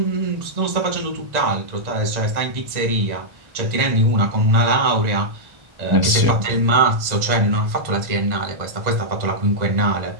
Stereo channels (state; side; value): late; left; 1.9 ms